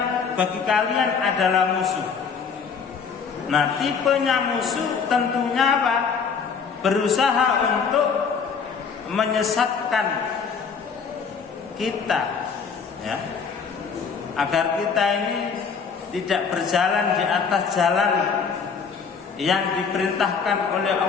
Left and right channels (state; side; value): quieter; right; 6.0 dB